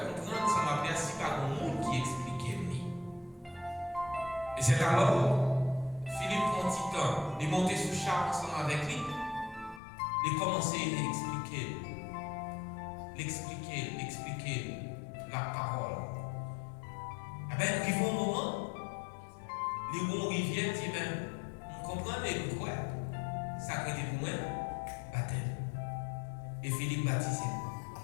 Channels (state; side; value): drops out; right; at 9.8 s